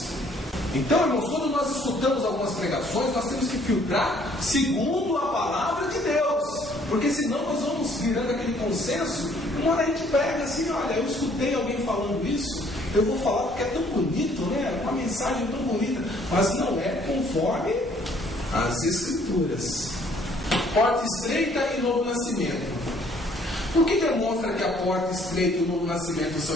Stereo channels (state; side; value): normal; both; correlation 0.62